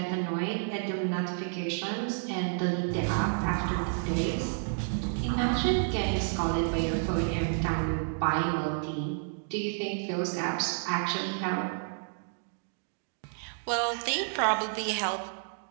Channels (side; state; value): left; silent; digital silence